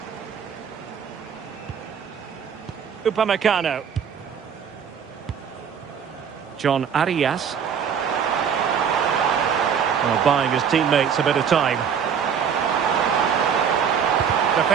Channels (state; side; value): quieter; left; 7.4 dB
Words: Upamecano. John Arias. Well, buying his teammates a bit of time.